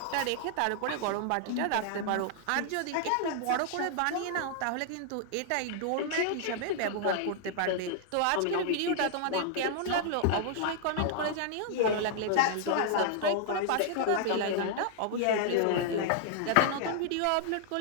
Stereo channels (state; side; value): different; both; correlation -0.01